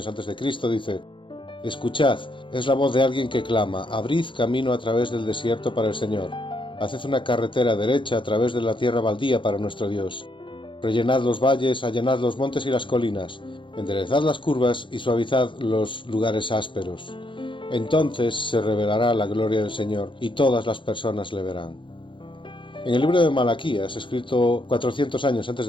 antes de Cristo, dice: «Escuchad, es la voz de alguien que clama, abrid camino a través del desierto para el Señor, haced una carretera derecha a través de la tierra baldía para nuestro Dios. Rellenad los valles, allanad los montes y las colinas, enderezad las curvas y suavizad los lugares ásperos. Entonces se revelará la gloria del Señor y todas las personas le verán». En el libro de Malaquías, escrito 400 años antes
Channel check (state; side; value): late; right; 0.24 ms